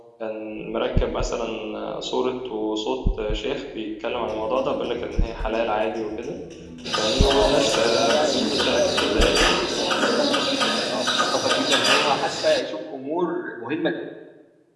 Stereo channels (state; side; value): identical; both; correlation 1.00